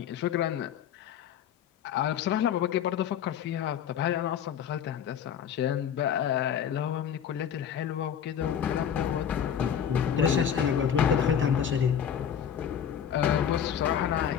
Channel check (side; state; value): right; quieter; 8.7 dB